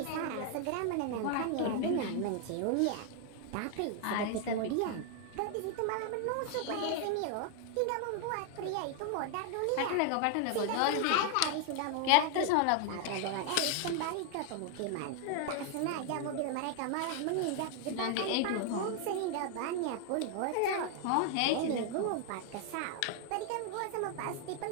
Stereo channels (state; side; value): different; both; correlation 0.00